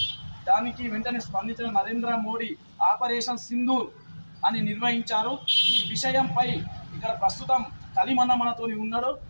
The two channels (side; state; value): both; inverted; correlation -1.00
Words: దానికి వెంటనే స్పందించిన నరేంద్ర మోడీ ఆపరేషన్ సింధూర్ అని నిర్వహించారు. ఈ విషయంపై ఇక్కడ ప్రస్తుతం కలిమన్న మనతోని ఉన్నాడు.